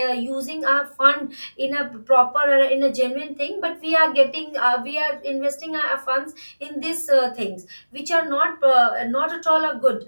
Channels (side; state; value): both; inverted; correlation -1.00